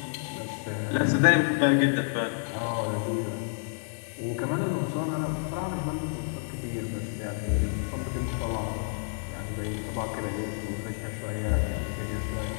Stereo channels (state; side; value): silent; right; digital silence